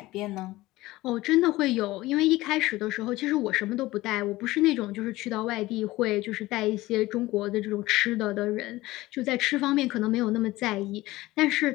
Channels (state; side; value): quieter; right; 18.4 dB